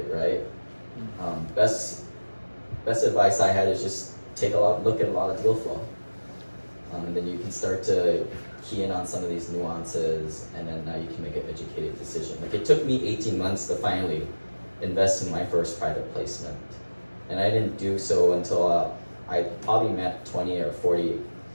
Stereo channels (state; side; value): inverted; both; correlation -1.00